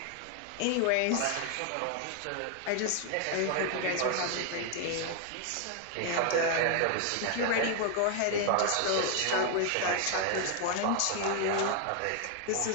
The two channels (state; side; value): different; both; correlation 0.00